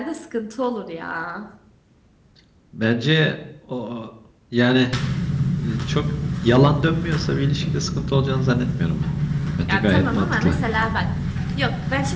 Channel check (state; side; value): identical; both; correlation 1.00